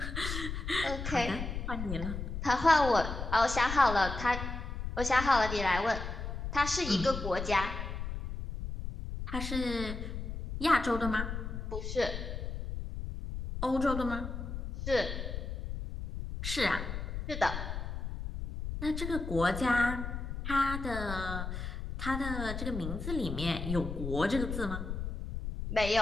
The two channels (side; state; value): left; noise; rumble, 5 dB below the sound